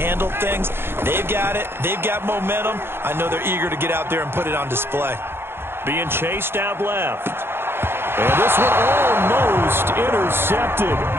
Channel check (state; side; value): late; left; 0.11 ms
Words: things. They've got it. They've got momentum. I know they're eager to get out there and put it on display. Being chased out left. And this one almost intercepted.